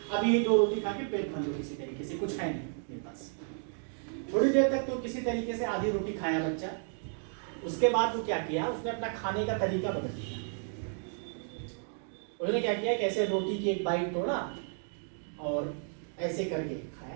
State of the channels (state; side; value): silent; left; 56 dB below the other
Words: अभी ये 2 रोटी खा के पेट भर लो किसी तरीके से, कुछ है नहीं मेरे पास। थोड़ी देर तक तो किसी तरीके से आधी रोटी खाया बच्चा। उसके बाद वो क्या किया, उसने अपना खाने का तरीका बदल दिया। उसने क्या किया कि ऐसे रोटी की एक बाइट तोड़ा और ऐसे करके